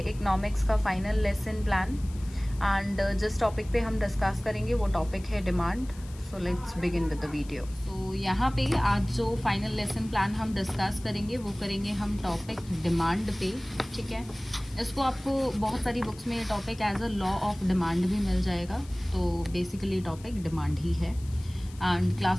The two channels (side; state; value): left; noise; hiss, 22 dB below the sound